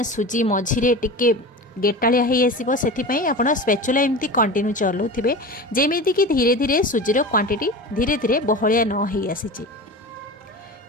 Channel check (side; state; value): both; normal; correlation 0.31